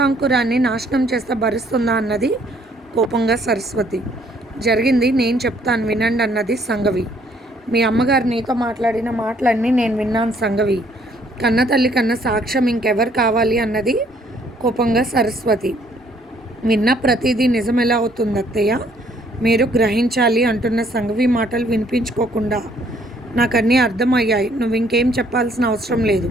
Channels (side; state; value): both; normal; correlation 0.64